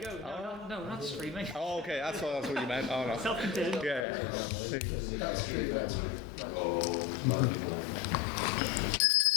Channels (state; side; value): drops out; right; at 4.0 s